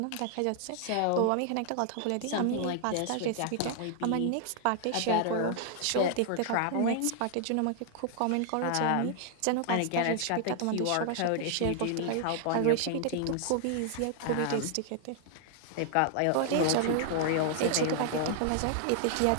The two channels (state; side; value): different; both; correlation 0.00